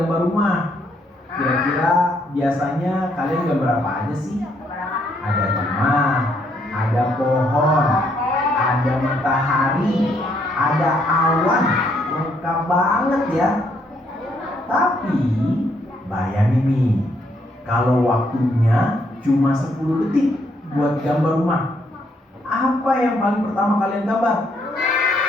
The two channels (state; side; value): normal; both; correlation 0.72